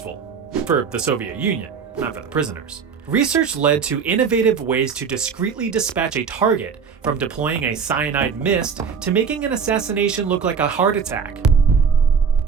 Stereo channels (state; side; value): quieter; left; 6.3 dB